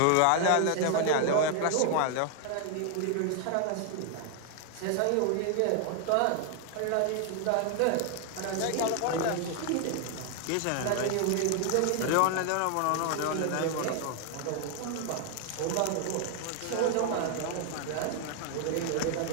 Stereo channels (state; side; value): different; both; correlation 0.00